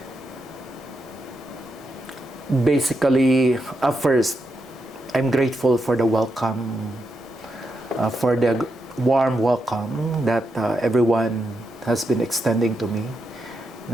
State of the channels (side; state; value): both; normal; correlation 0.84